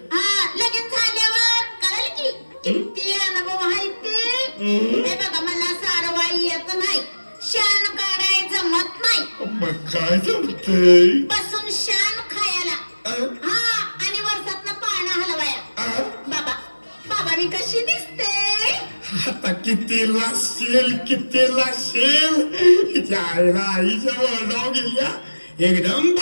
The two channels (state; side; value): inverted; both; correlation -1.00